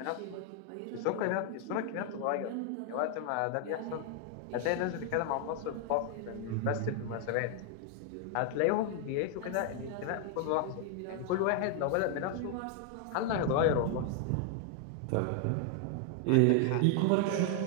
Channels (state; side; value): different; both; correlation 0.00